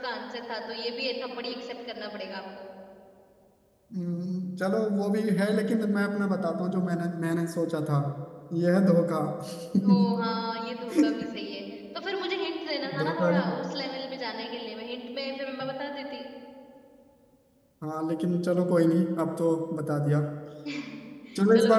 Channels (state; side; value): identical; both; correlation 1.00